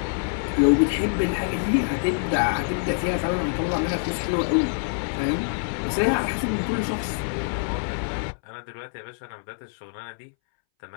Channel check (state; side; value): silent; right; 61 dB below the other